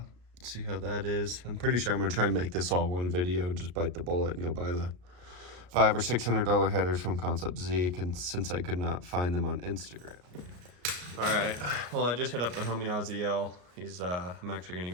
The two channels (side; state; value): left; late; 33 ms